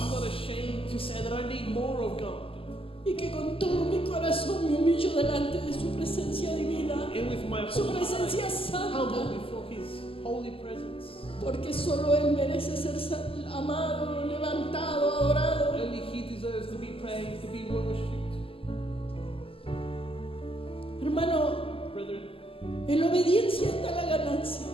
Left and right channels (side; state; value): right; late; 0.26 ms